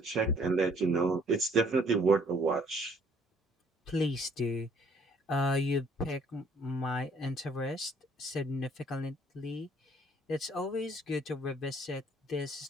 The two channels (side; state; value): both; normal; correlation 0.61